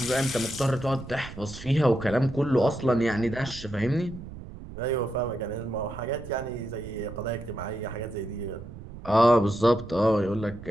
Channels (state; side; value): noise; right; rumble, 14 dB below the sound